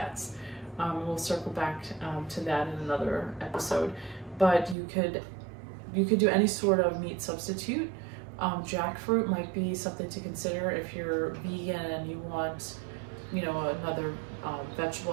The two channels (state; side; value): drops out; left; at 4.8 s